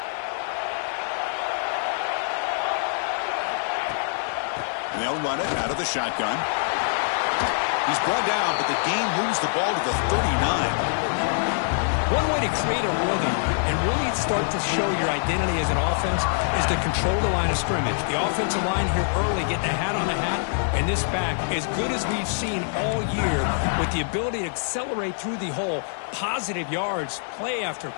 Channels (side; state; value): right; silent; 57 dB below the other